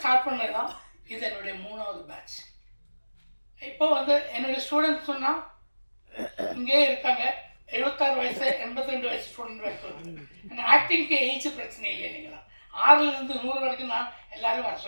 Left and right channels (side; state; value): both; inverted; correlation -1.00